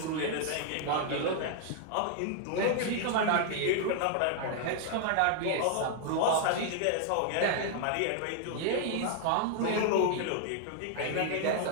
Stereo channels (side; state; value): both; different; correlation 0.00